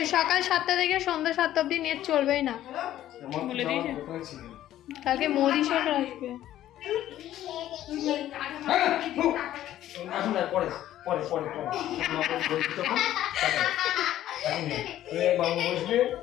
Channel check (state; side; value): quieter; right; 12.8 dB